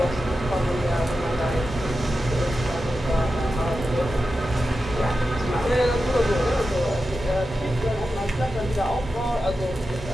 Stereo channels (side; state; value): both; normal; correlation 0.91